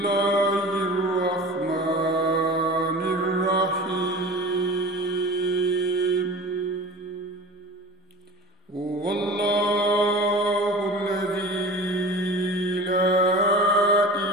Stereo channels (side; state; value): both; normal; correlation 0.37